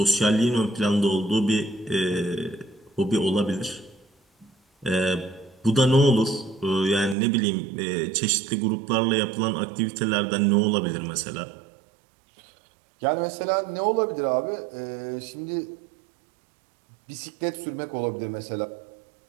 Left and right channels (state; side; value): drops out; left; at 7.2 s